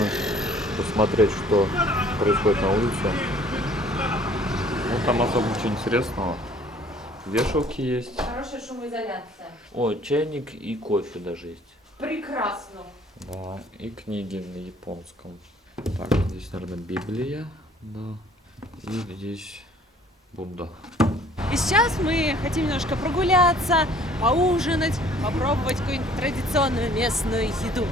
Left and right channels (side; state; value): both; normal; correlation 0.56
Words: посмотреть, что происходит на улице. Ну, там особо ничего интересного. Вешалки есть. Хорошая шумоизоляция. О, чайник и кофе даже есть. Прекрасно. Да, и книги на японском. Так, здесь, наверное, Библия. Да. И здесь Будда. И сейчас мы хотим немножко прогуляться, поужинать, попробовать какую-нибудь традиционную местную еду.